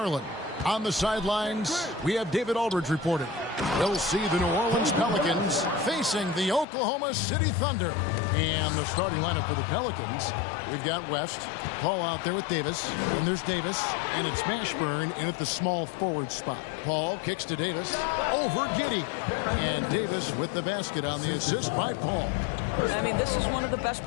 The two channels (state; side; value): drops out; right; at 6.7 s